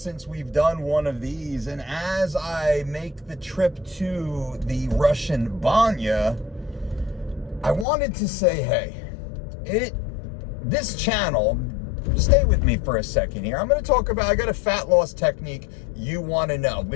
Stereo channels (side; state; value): right; drops out; at 7.9 s